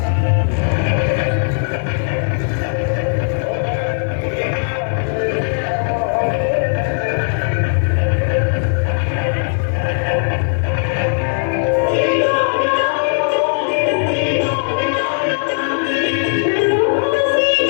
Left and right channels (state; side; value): silent; right; digital silence